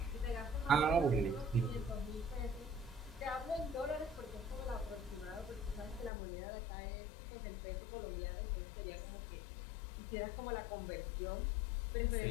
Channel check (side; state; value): right; drops out; at 6.1 s